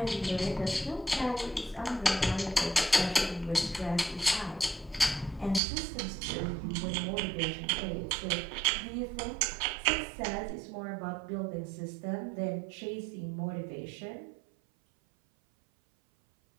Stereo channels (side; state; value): left; drops out; at 5.6 s